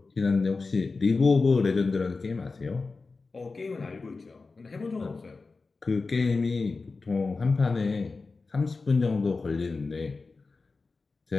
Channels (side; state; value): right; quieter; 4.0 dB